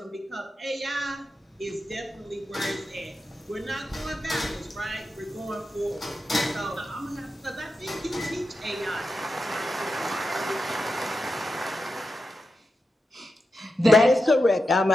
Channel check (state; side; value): normal; both; correlation 0.89